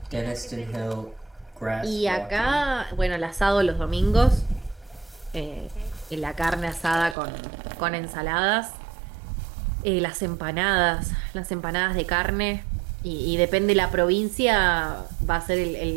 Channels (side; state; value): left; drops out; at 7.2 s